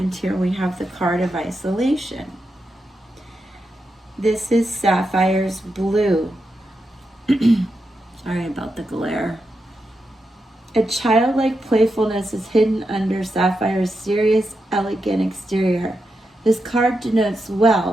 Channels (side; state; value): both; normal; correlation 0.87